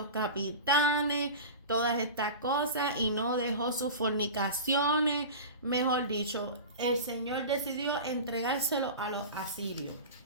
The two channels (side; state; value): both; inverted; correlation -0.30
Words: capitanes, todas estas cosas y no dejó sus fornicaciones. Mejor dicho, el Señor decidió entregárselo a los asirios.